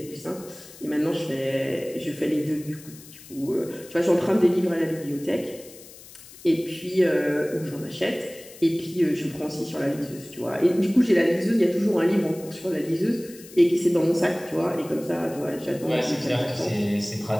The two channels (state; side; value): noise; left; hiss, 19 dB below the sound